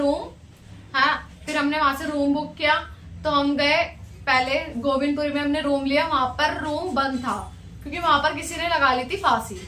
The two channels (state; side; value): identical; both; correlation 1.00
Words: हाँ फिर हमने वहां से रूम बुक किया। तो हम गए पहले गोविंदपुरी में हमने रूम लिया, वहां पर रूम बंद था क्योंकि वहां पर किसी ने लगा ली थी फांसी,